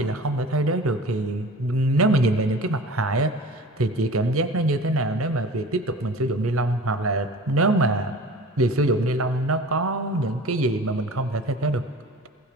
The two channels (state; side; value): normal; both; correlation 0.40